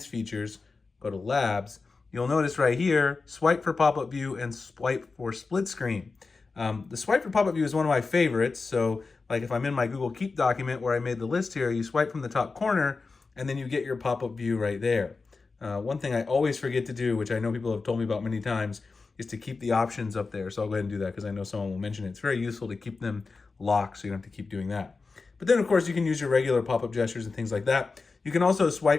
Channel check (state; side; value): quieter; right; 4.2 dB